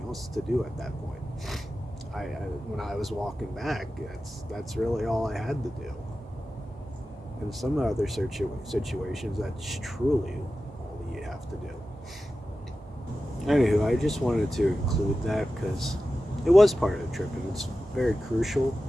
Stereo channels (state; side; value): normal; both; correlation 0.93